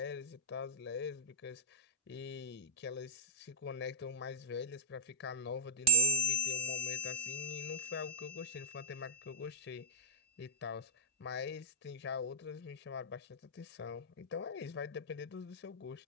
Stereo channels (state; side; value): normal; both; correlation -0.03